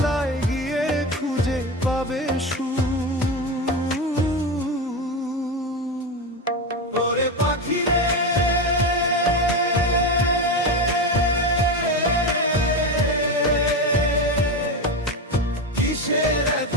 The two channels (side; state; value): both; normal; correlation 0.18